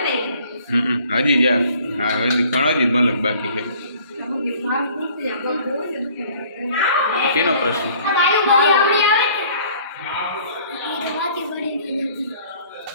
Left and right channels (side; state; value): both; inverted; correlation -0.55